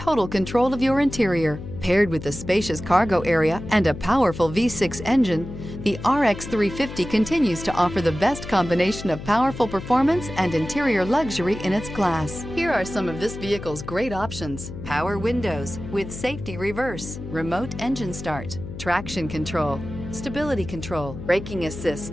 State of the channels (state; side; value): noise; left; hum, 11 dB below the sound